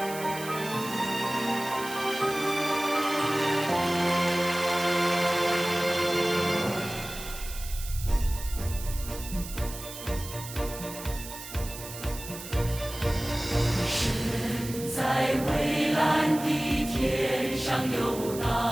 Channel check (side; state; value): right; noise; hiss, 12 dB below the sound